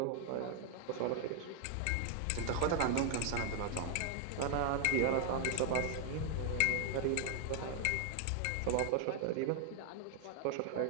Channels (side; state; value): both; different; correlation 0.00